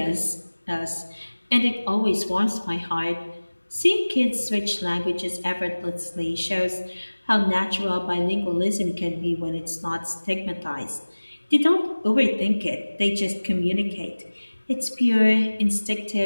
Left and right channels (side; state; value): both; inverted; correlation -1.00